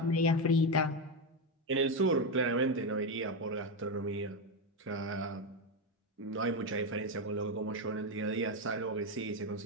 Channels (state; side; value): normal; both; correlation 0.09